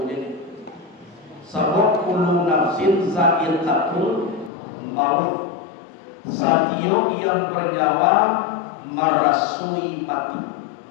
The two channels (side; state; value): right; drops out; at 4.5 s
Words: jadi. Sabab kullu nafsin za'iqatul maut. Satio yang bernyawa merasui mati.